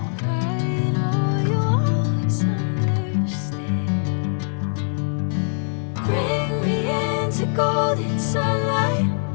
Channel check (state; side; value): silent; right; digital silence